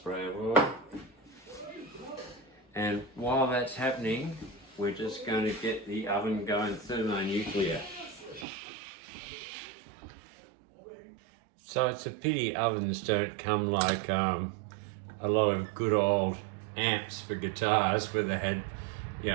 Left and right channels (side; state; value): left; drops out; at 8.5 s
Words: of oil. And while that's happening, we're just going to get the oven going thermonuclear. So it's a pity ovens don't come like a lot of good old amps for guitars where they had,